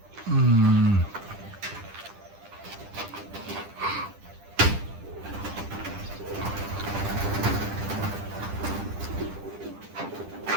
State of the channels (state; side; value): late; left; 10 ms